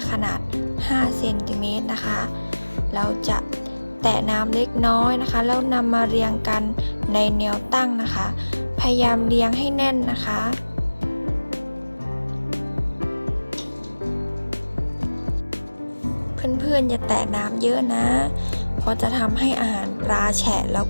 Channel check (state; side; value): inverted; both; correlation -1.00